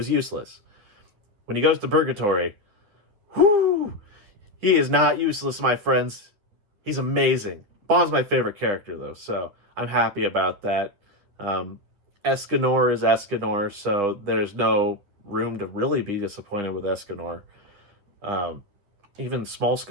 useless. When he goes to Purgatory, he is not useless, my friends. He's amazing. Bon's my favorite character, though, so I'm happy about that. Escanor is Escanor, so there's no room to really be disappointed with Escanor. Even small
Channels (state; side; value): late; left; 10 ms